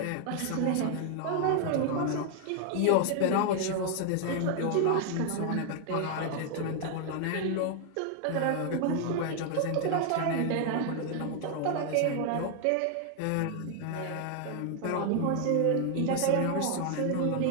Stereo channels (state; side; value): different; both; correlation 0.00